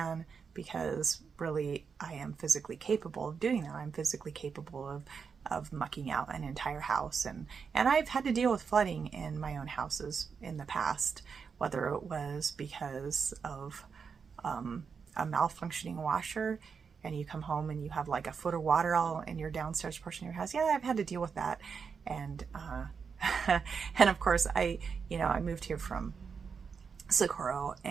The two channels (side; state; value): left; quieter; 5.9 dB